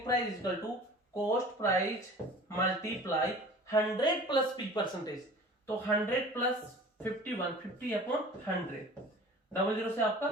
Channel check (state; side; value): normal; both; correlation 0.43